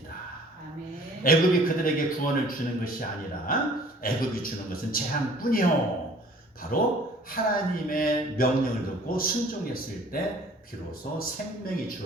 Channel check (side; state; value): both; normal; correlation 0.52